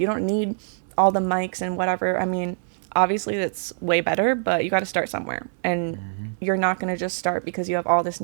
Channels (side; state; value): left; silent; 62 dB below the other